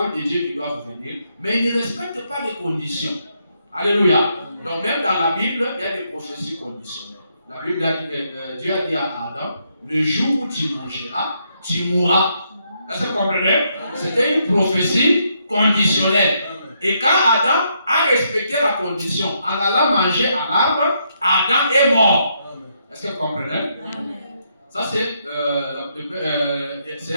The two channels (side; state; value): both; inverted; correlation -0.76